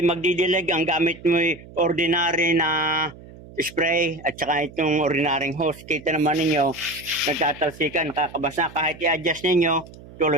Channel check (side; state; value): right; noise; hum, 19 dB below the sound